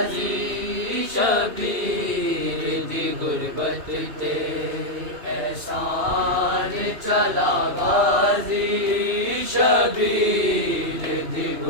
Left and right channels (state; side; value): late; left; 2.9 ms